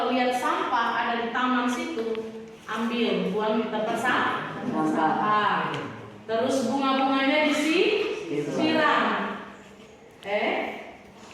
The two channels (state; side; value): identical; both; correlation 1.00